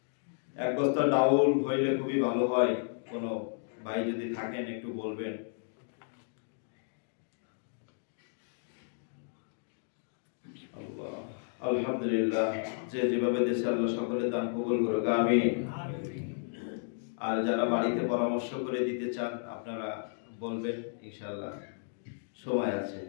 এক বস্তা ডাউল হইলে খুবই ভালো হয়। কোনো ভাই যদি থাকেন একটু বলবেন। আল্লাহ, আলহামদুলিল্লাহ। যে যেভাবে দেশে আল্লাহ সকলে দান কবুল করুক, আমিন। আর যারা বাড়িতে পরামর্শ করে দিতে চান আপনারা বলবেন, ইনশাআল্লাহ সময় আছে।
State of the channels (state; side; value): silent; right; digital silence